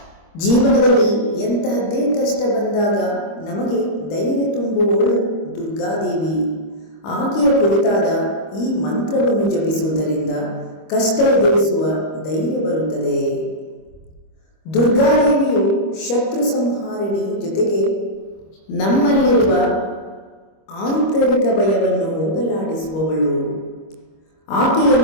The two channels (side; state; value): right; late; 25 ms